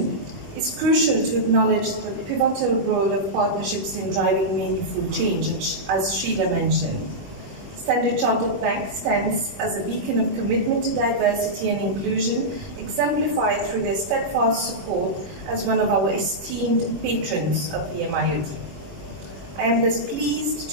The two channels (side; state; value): left; late; 21 ms